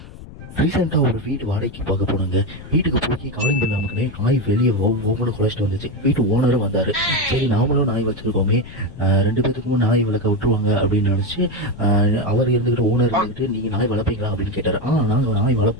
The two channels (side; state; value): left; noise; rumble, 16 dB below the sound